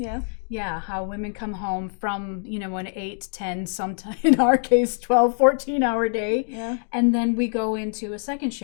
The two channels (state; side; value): silent; right; 63 dB below the other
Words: Yeah, how women come home from, an 8, 10, sometimes in our case, 12, 14-hour day. Yeah. And then we go into a second